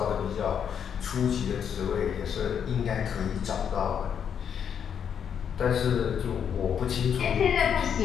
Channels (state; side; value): quieter; right; 8.0 dB